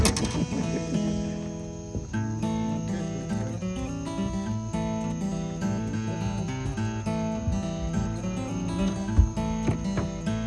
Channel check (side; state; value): both; identical; correlation 1.00